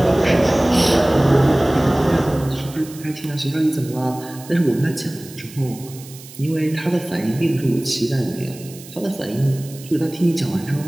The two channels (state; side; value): noise; right; hiss, 18 dB below the sound